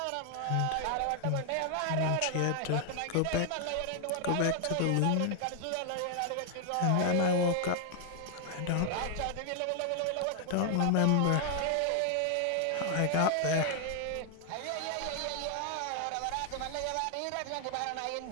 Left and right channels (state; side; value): different; both; correlation 0.00